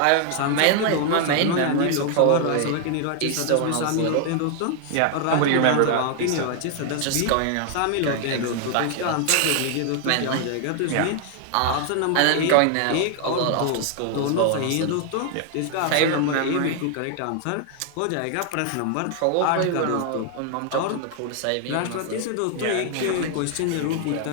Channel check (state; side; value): different; both; correlation 0.00